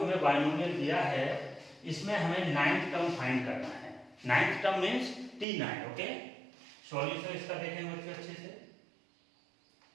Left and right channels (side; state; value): left; drops out; at 5.5 s